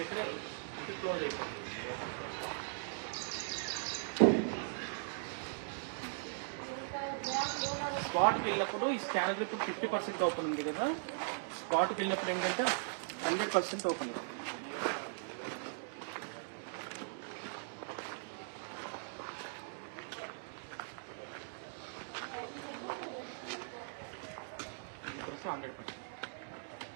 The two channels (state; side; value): silent; left; digital silence